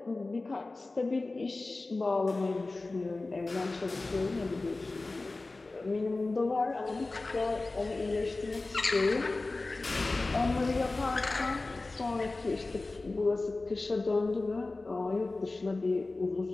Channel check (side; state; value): right; quieter; 3.3 dB